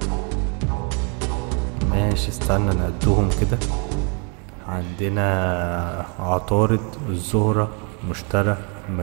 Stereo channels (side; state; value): left; quieter; 37.0 dB